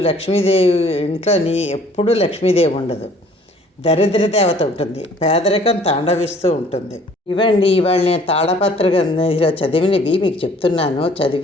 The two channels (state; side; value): normal; both; correlation 0.55